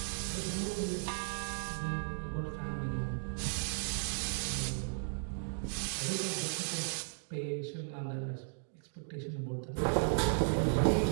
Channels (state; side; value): silent; left; digital silence